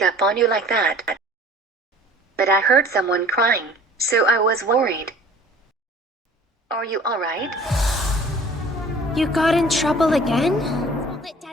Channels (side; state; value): both; normal; correlation 0.48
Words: up on you like that. But I heard someone crying, so I was worried. Are you alright? You got in trouble again? Let